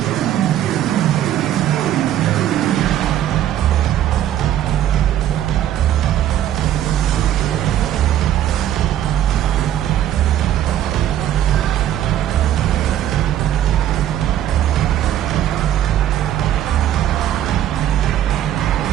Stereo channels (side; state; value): left; quieter; 11.5 dB